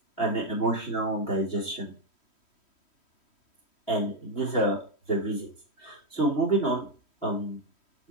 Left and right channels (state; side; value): late; right; 3.1 ms